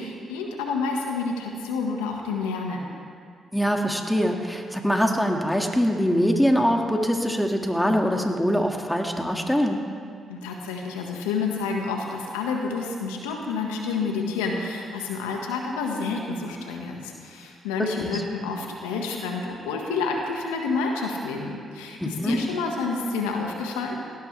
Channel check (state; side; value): normal; both; correlation 0.76